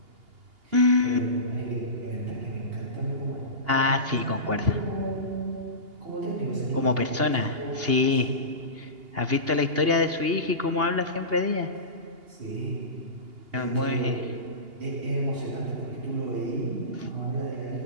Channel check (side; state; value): left; late; 2.8 ms